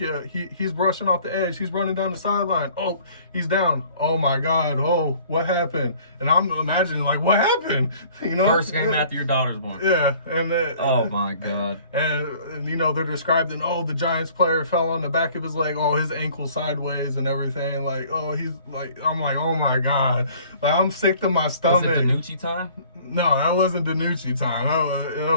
he's rushing off the edge. He's running down the sideline. Oh, he's down. Oh my God. Oh, what happened? And I'm imagining like, what happened? First game after your daughter's born. Yeah. And oh my God. And they're describing, the Giants player fell on the back of his leg. Oh, his ankle sideways and everything. Like, he's like, I'm like, oh my God. Like, I'm sick to my stomach. Was it DiNucci time? No, that wasn't DiNucci time. That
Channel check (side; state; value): both; inverted; correlation -0.53